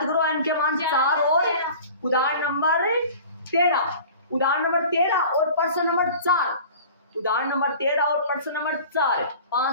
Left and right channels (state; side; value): inverted; both; correlation -0.42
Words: करो, एन के मान 4 और उदाहरण नंबर 13, उदाहरण नंबर 13 और पर्सन नंबर 4, उदाहरण नंबर 13 और पर्सन नंबर 4,